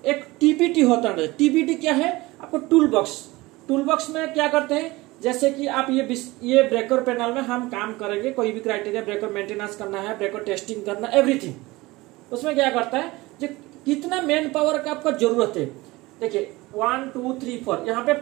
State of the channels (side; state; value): left; quieter; 20.9 dB